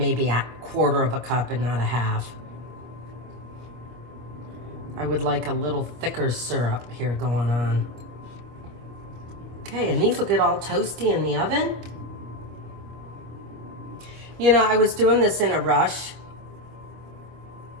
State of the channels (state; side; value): late; left; 25 ms